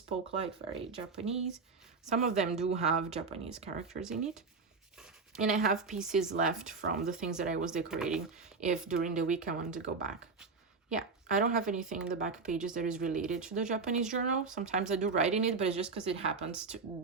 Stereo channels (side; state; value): left; quieter; 4.6 dB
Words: like very Japanese. Some of them do have Japanese characters in it. And I have pieces left from the things that I was decorating if during the week I wanted to go back. Yeah, I don't have anything in the back pages that is related to the Japanese journal. Sometimes I do write in it, but it's just because it happens to